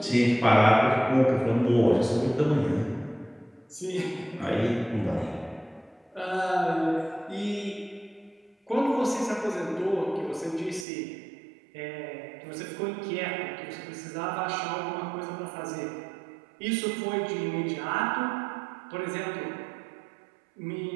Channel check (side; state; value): left; drops out; at 10.9 s